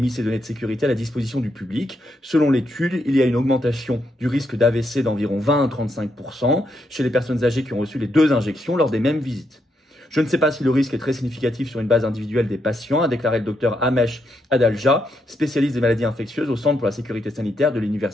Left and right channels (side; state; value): both; normal; correlation 0.79